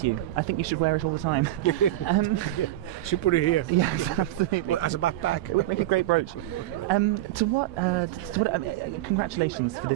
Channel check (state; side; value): quieter; left; 15.2 dB